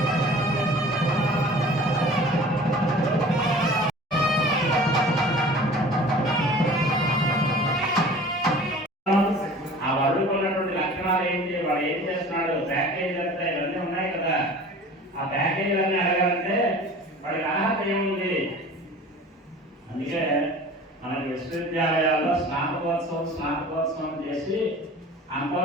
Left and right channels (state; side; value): normal; both; correlation 0.43